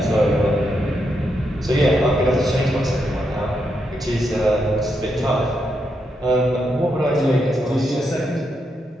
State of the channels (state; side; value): normal; both; correlation 0.82